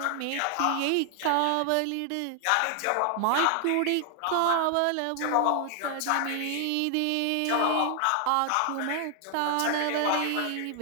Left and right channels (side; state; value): both; different; correlation 0.00